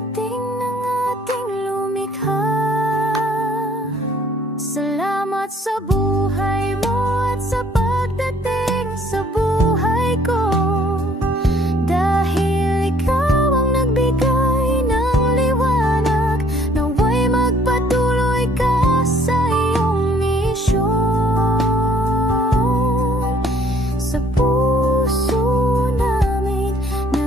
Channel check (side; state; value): both; normal; correlation 0.60